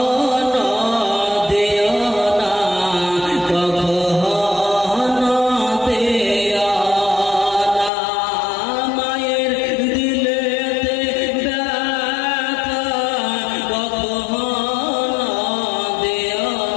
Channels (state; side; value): drops out; right; at 7.9 s